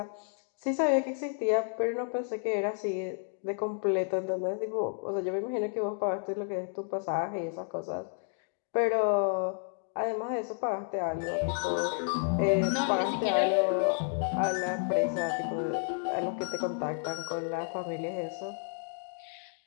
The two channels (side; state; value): right; silent; 57 dB below the other